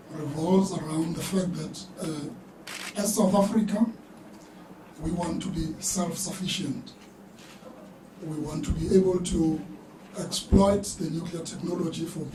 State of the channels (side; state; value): both; identical; correlation 1.00